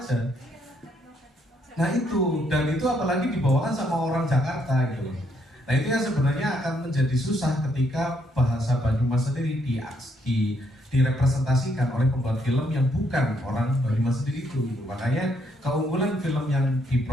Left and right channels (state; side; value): normal; both; correlation 0.72